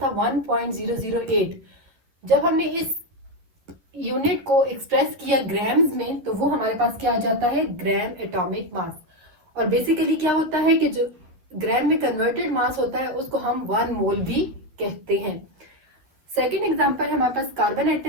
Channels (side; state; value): left; late; 10 ms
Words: था 1.008। जब हमने इस यूनिट को एक्सप्रेस किया ग्राम्स में तो वो हमारे पास क्या आ जाता है, ग्राम एटॉमिक मास। और बेसिकली क्या होता है कि जो ग्राम में कन्वर्टेड मास होता है उसको हम 1 मोल भी कहते हैं। सेकेंड एग्जांपल है हमारे पास कार्बन